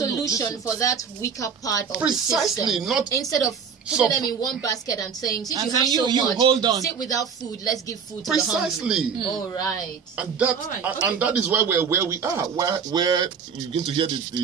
for that weaker part of Precisely, the system. not instead of putting them in one basket and saying, since you have so much, hold on. sit without food, let's give food to precisely. the hungry. All right. And that and that is why we're where we are, where you begin to hear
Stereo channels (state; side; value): quieter; left; 6.5 dB